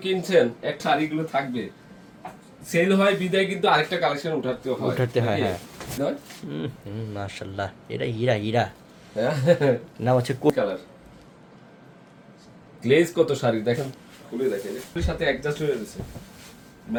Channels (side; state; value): both; identical; correlation 1.00